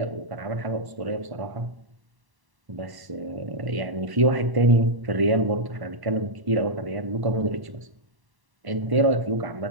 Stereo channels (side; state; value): left; late; 1.1 ms